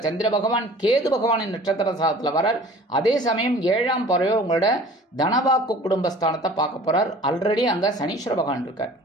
சந்திர பகவான் கேது பகவானின் நட்சத்திர சாரத்தில் வரார். அதே சமயம் 7ஆம் பார்வையோ உங்களோட தனவாக்கு குடும்பஸ்தானத்தை பார்க்க போகிறார். ஆல்ரெடி அங்கே சனீஸ்வர பகவான் இருக்கார்.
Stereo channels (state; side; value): normal; both; correlation 0.47